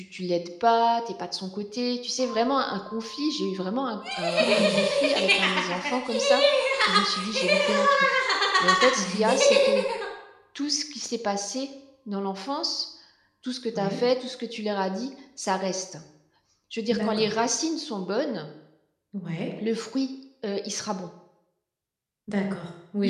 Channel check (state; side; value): identical; both; correlation 1.00